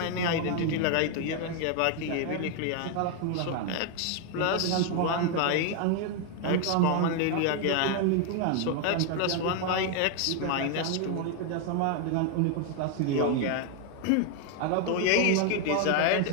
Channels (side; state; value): both; different; correlation 0.01